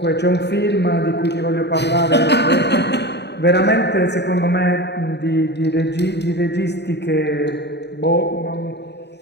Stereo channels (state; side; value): late; right; 0.49 ms